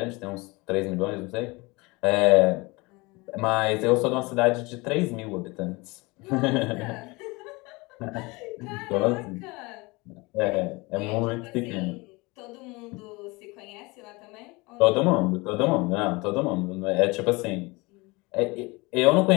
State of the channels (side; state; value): right; quieter; 24.7 dB